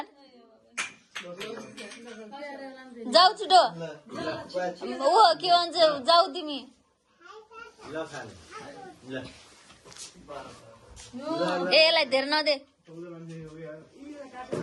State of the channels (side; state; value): both; identical; correlation 1.00